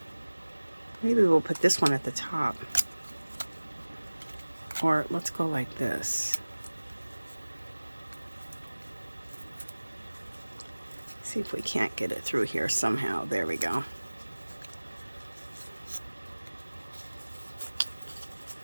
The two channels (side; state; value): both; inverted; correlation -1.00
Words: maybe we'll put this one at the top. Or let's go like this. See if we can't get it through here somehow. There we go.